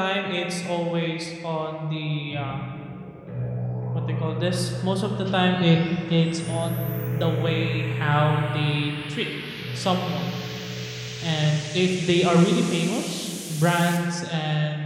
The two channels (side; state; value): both; identical; correlation 1.00